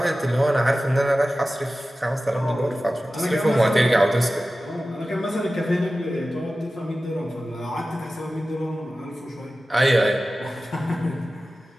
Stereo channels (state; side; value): normal; both; correlation 0.95